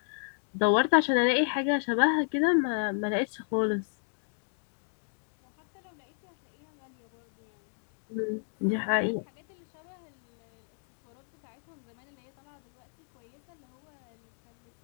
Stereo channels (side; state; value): right; silent; digital silence